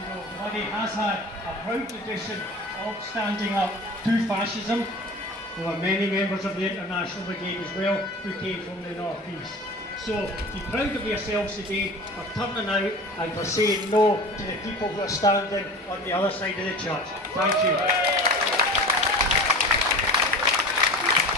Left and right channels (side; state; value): both; normal; correlation 0.36